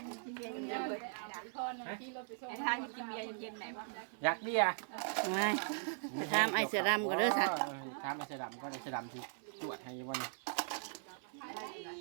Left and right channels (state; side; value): silent; left; 51 dB below the other